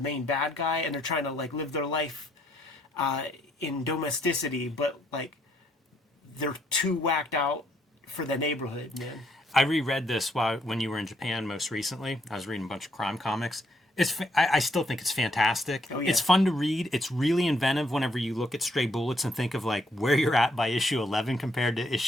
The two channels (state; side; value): normal; both; correlation 0.71